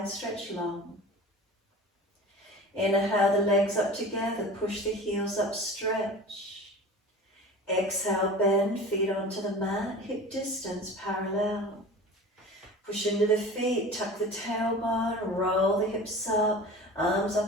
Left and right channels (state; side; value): normal; both; correlation 0.37